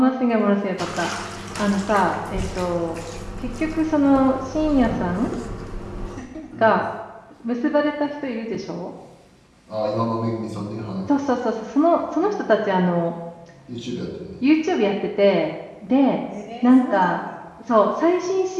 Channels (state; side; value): identical; both; correlation 1.00